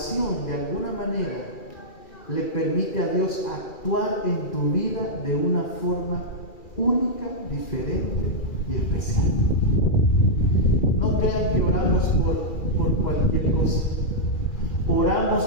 de alguna manera, le permite a Dios actuar en tu vida de una forma única, diferente y especial. No crean que oramos por cualquier cosa. Oramos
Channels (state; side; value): late; right; 2.4 ms